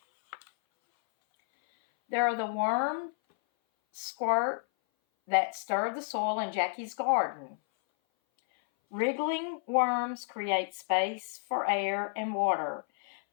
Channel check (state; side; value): silent; right; 57 dB below the other